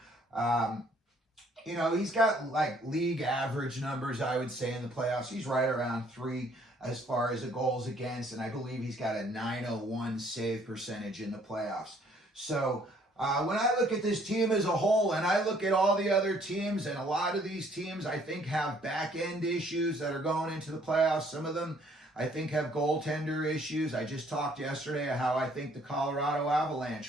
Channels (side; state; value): both; normal; correlation 0.62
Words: He's got like league average numbers, I would say, in the playoffs. He's right around 3 as far as the goals against, and I believe he's got a 901 save percentage in the playoffs. So when I look at this team as a whole, and I look at all the other teams, and a lot of these teams I think have back-end issues that are going into the playoffs. Some of them I think have goaltender issues. I just talked yesterday how I think the Colorado